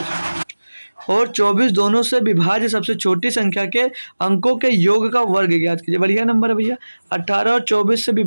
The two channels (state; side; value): inverted; both; correlation -1.00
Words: और 24 दोनों से विभाज्य सबसे छोटी संख्या के अंकों के योग का वर्ग ज्ञात कीजिए। बढ़िया नंबर है भैया, 18 और 24 से